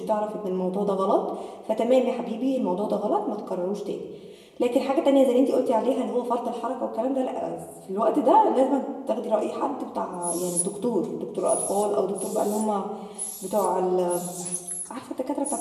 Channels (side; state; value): both; identical; correlation 1.00